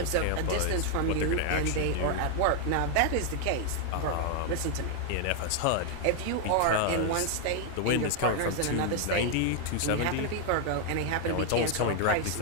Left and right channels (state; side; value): different; both; correlation 0.00